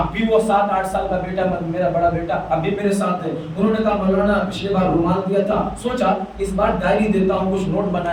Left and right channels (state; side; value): identical; both; correlation 1.00